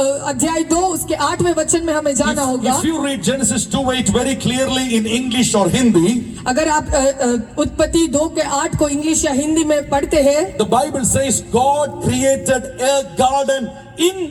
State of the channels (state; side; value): identical; both; correlation 1.00